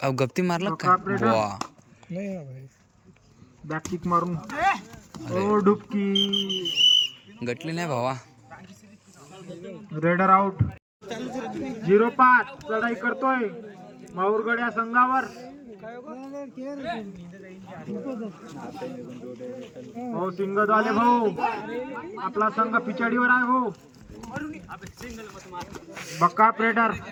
गप्ती मारलं का. वा बॅक किक मारून ओ डुबकी गटली नाही भावा. Raider out. 0-5 चढाई करतोय माहूरगड या संघावर। भाऊ सिंगद आले भाऊ आपला संघ पिछाडीवर आहे भाऊ। बक्का प्रेडर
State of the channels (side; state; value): both; identical; correlation 1.00